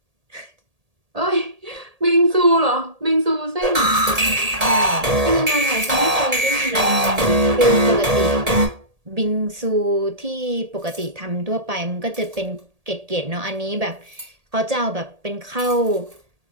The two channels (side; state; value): left; late; 1.8 ms